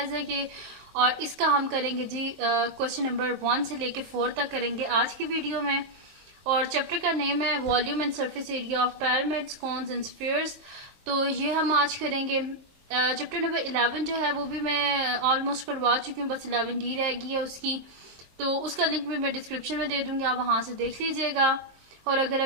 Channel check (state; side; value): late; left; 23 ms